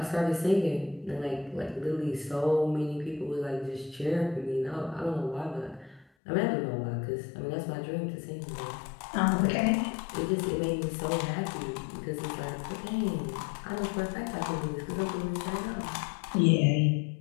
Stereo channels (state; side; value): drops out; right; at 6.1 s